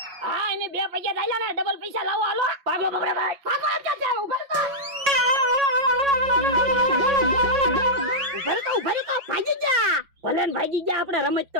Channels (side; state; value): left; late; 5.4 ms